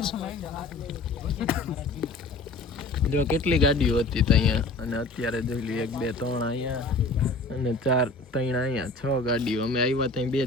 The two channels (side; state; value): right; quieter; 3.3 dB